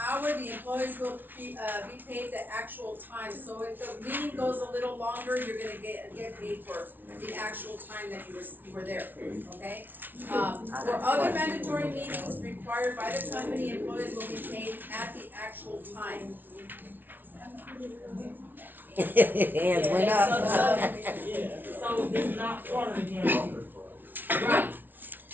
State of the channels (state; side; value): late; left; 0.090 ms